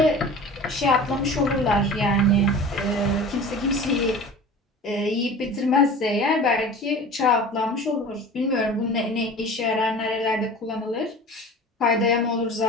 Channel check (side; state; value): both; normal; correlation 0.39